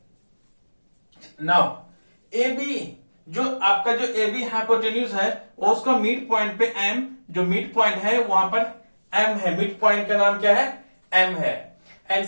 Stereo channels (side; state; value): both; inverted; correlation -1.00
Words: नाउ ए बी जो आपका जो ए बी हाइपोटेन्यूज है उसका मिड पॉइंट पे एम, जो मिड पॉइंट है वहां पर एम है, मिड पॉइंट का नाम क्या है, एम है। And